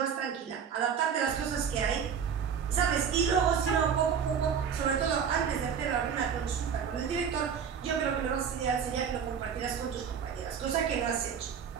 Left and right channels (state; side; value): quieter; left; 7.3 dB